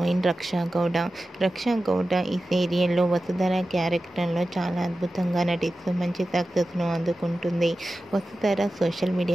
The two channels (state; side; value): normal; both; correlation 0.94